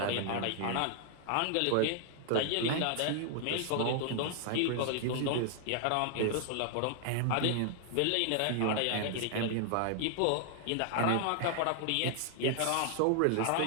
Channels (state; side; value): different; both; correlation 0.00